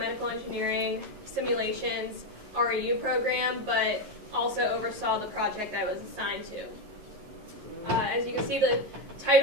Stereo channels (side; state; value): left; late; 11 ms